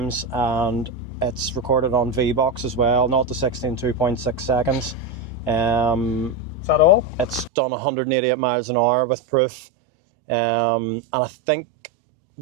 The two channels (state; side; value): drops out; left; at 7.5 s